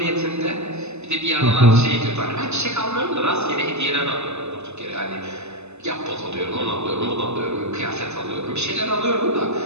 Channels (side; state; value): left; late; 0.81 ms